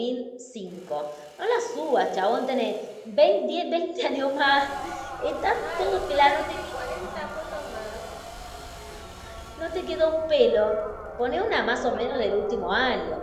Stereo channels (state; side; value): identical; both; correlation 1.00